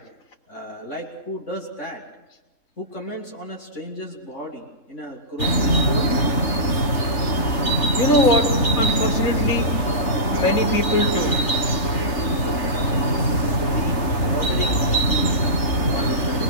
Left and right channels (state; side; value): late; right; 3.4 ms